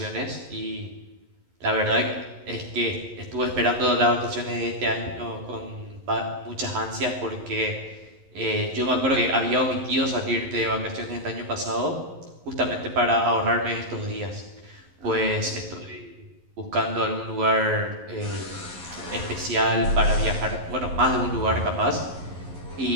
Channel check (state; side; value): late; left; 11 ms